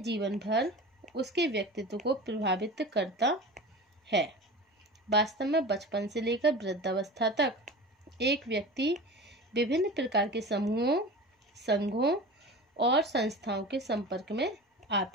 भर उसके व्यक्तित्व को प्रभावित करता है। वास्तव में बचपन से लेकर वृद्धावस्था तक एक व्यक्ति विभिन्न प्रकार के समूहों, संघों और संस्थाओं के संपर्क में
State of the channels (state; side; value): normal; both; correlation 0.33